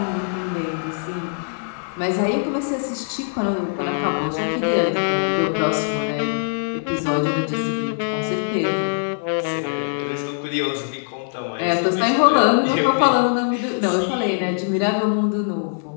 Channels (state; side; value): silent; right; digital silence